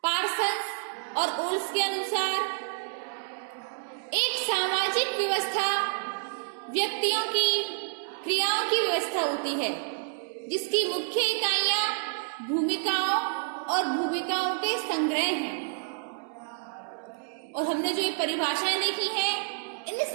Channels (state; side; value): silent; left; 59 dB below the other